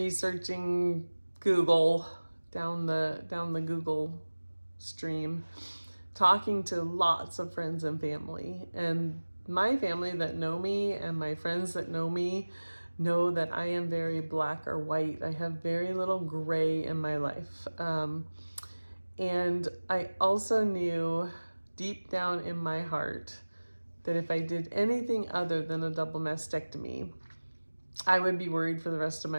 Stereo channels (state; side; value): inverted; both; correlation -1.00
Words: Google, down the Google stream, talking to lots of friends and family. And my family that know me and my friends that know me know that I am very black or white. I have very little gray in my life. And I also knew deep down in my heart that if I did anything other than a double mastectomy, I would be worried for the rest of